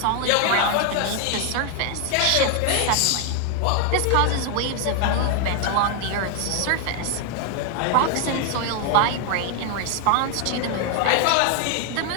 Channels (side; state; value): both; different; correlation 0.01